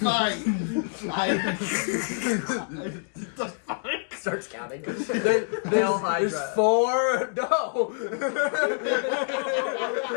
Starts counting. Hail Hydra. There's 4. No.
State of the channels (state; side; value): silent; right; digital silence